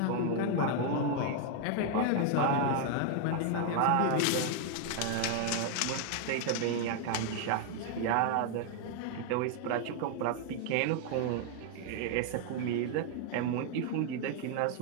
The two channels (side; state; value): both; different; correlation 0.00